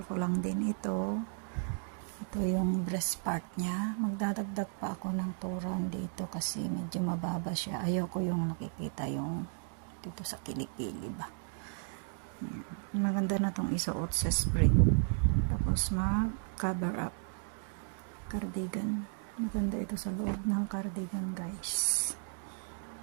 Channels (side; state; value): left; silent; 55 dB below the other